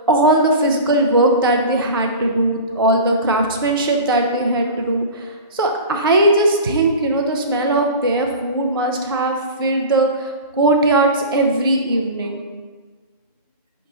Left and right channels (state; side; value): inverted; both; correlation -0.32